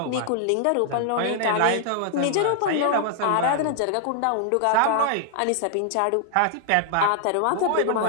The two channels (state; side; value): different; both; correlation -0.01